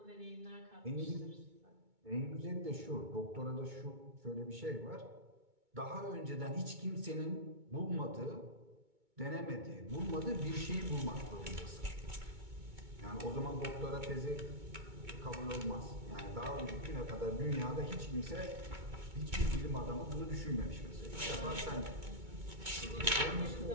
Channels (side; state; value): left; late; 2.2 ms